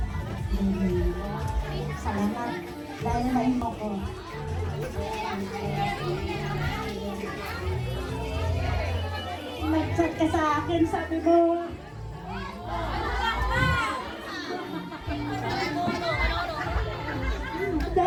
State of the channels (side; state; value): both; identical; correlation 1.00